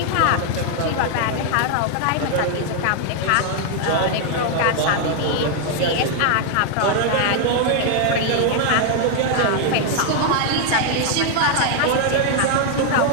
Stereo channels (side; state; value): both; different; correlation 0.00